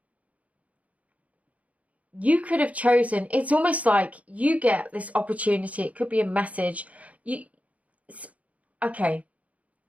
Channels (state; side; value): late; left; 0.068 ms